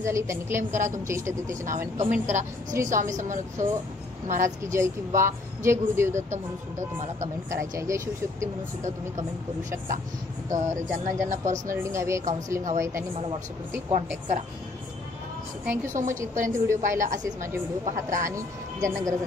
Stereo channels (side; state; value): right; quieter; 3.1 dB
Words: झाली त्यांनी क्लेम करा, तुमच्या इष्टदेवतेच्या नावाने कमेंट करा. श्री स्वामी समर्थ महाराज की जय किंवा जय गुरुदेव दत्त म्हणून सुद्धा तुम्हाला कमेंट करायची आहे. जय शिवशक्ती म्हणून सुद्धा तुम्ही कमेंट करू शकता. तर ज्यांना ज्यांना पर्सनल रीडिंग हवी आहे, काउन्सिलिंग हवं आहे, त्यांनी मला व्हॉट्सअपवरती कॉन्टॅक्ट करा. Thank you so much. इथपर्यंत व्हिडिओ पाहिला. असेच माझे व्हिडिओ पाहत राहा आणि ज्यांना गरज